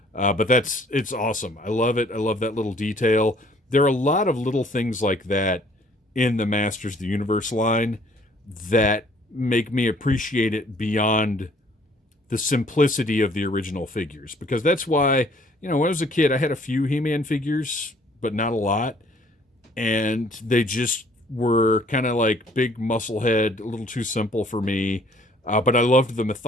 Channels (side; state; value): both; normal; correlation 0.59